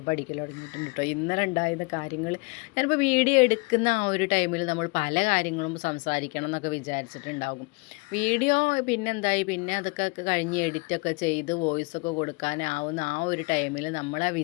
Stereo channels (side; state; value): right; quieter; 28.4 dB